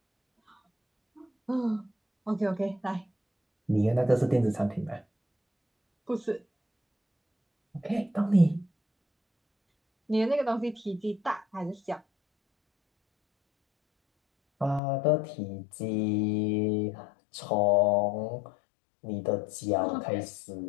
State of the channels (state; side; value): drops out; right; at 14.8 s